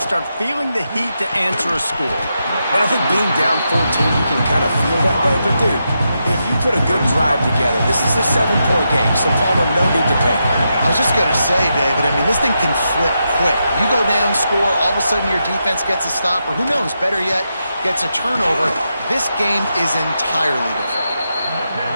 feeling the heat to answer a score. And I think being down 14, you can kind of feel that way. But, dude, if you put a good drive together, this is a 7-point game, so Palmer, no need to panic. I was just going to say, David, I mean, this thing can flip quick. You go down, score, all of a sudden your defense gets a stop, or who knows, better yet, gets a turnover. This game is entirely different.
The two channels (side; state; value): both; inverted; correlation -0.85